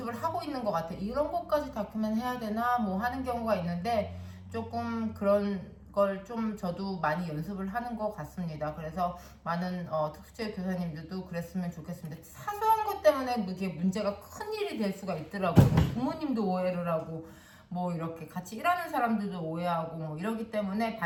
하고 있는 것 같아요. 이런 것까지 다큐멘 해야 되나 뭐 하는 경우가 있는데 조금 그런 걸 좀 저도 많이 연습을 하는 것 같습니다. 그래서 많은 특수체 교사님들도 그랬으면 좋겠습니다. 사소한 것 때문에 이게 문제가 큰 일이 될 수가 있더라고요. 부모님도 오해를 하고 뭐 이렇게 같이 일하는 사람들도 오해하고 뭐 이러기 때문에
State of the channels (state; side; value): identical; both; correlation 1.00